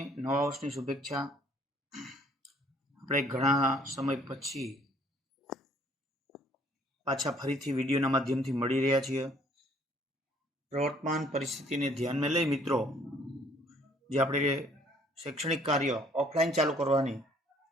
નવા વર્ષની શુભેચ્છા। આપણે ઘણા સમય પછી પાછા ફરીથી વિડીયોના માધ્યમથી મળી રહ્યા છીએ। પ્રવર્તમાન પરિસ્થિતિને ધ્યાનમાં લઈ મિત્રો, જે આપણે શૈક્ષણિક કાર્ય ઓફલાઈન ચાલુ કરવાની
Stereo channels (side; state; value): both; normal; correlation 0.61